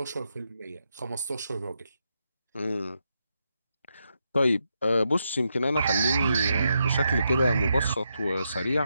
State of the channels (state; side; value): inverted; both; correlation -0.83